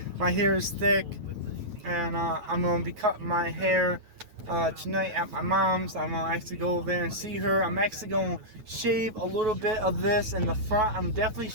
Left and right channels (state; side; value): late; left; 9.3 ms